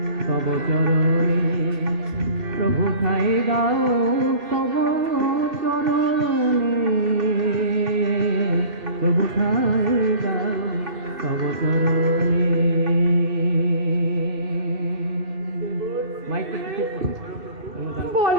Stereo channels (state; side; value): late; left; 2.3 ms